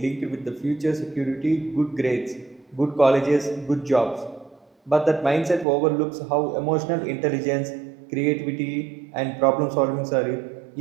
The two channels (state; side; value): drops out; left; at 5.7 s